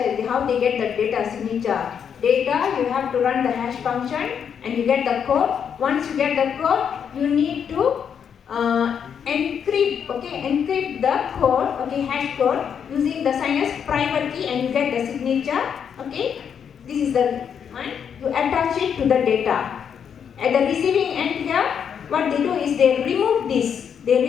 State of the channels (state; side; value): quieter; right; 7.7 dB